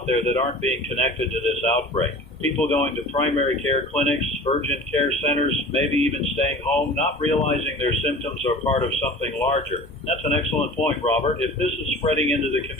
there that aren't being connected to this outbreak. People going to primary care clinics, urgent care centers, maybe even staying home, not realizing their symptoms are part of something larger. That's an excellent point, Robert. If this is spreading into the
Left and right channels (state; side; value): normal; both; correlation 0.40